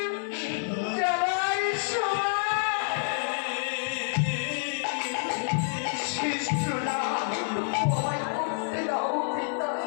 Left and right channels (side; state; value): right; silent; 59 dB below the other